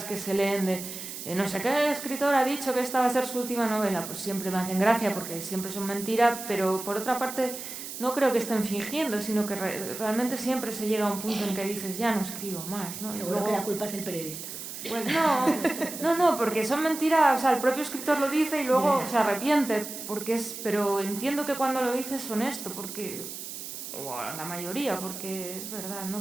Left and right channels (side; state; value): right; noise; hiss, 9 dB below the sound